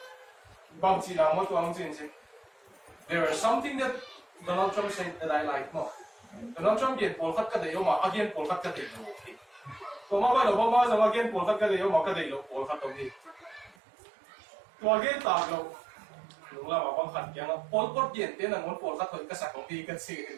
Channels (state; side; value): drops out; left; at 13.8 s